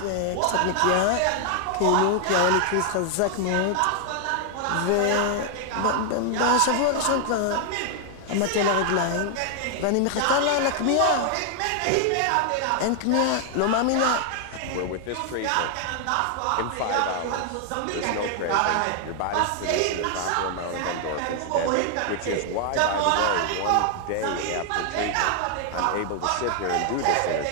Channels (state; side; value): different; both; correlation 0.00